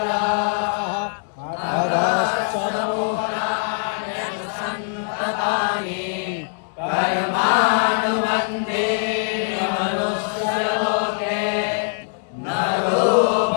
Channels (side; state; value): right; silent; 64 dB below the other